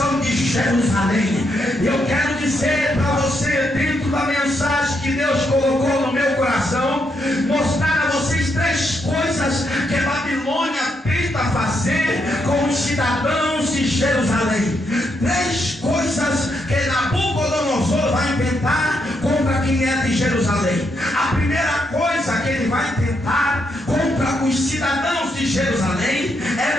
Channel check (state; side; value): normal; both; correlation 0.79